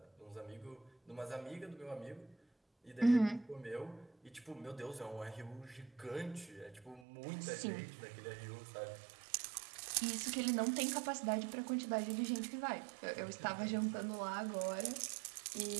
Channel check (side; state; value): left; drops out; at 7.1 s